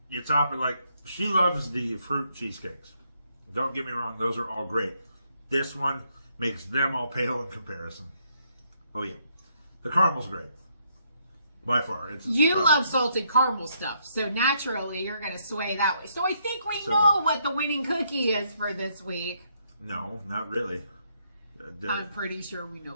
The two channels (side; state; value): both; inverted; correlation -0.74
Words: you top it like, she loves the fruit cheesecakes. Don't get me wrong, those are all great. This one makes them all pale in comparison. Oh yeah. The caramel's great. By far. You love salted caramel stuff, so naturally you're going to sway that way. So I think we know what the winning cookie is for this week. No, not really. I'm pretty sure we know